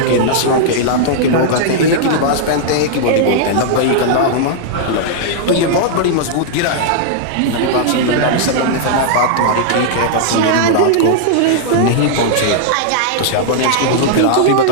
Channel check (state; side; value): different; both; correlation -0.01